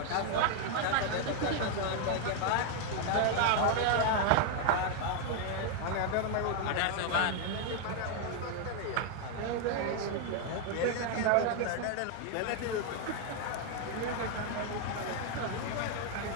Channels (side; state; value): both; different; correlation 0.00